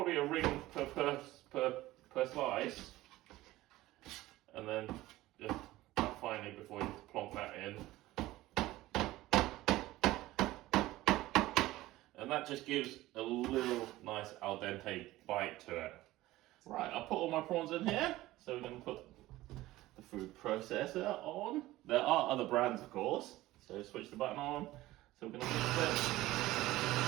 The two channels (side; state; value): left; quieter; 17.1 dB